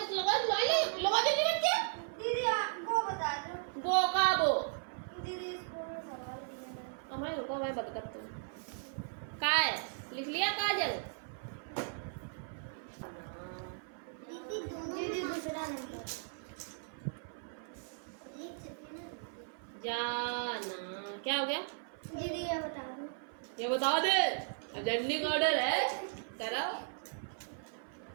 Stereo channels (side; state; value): left; silent; 53 dB below the other